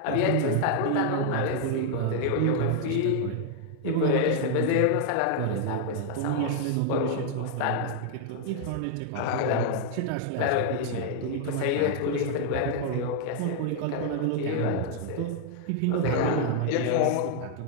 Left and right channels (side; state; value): both; different; correlation 0.00